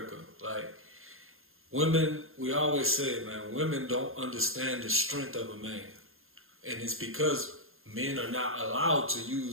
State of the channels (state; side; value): late; left; 0.61 ms